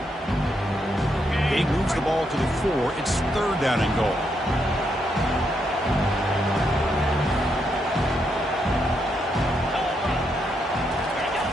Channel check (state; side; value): normal; both; correlation 0.79